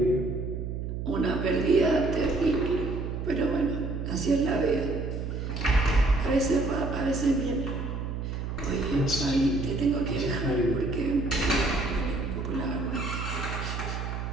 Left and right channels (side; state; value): right; noise; hum, 4 dB below the sound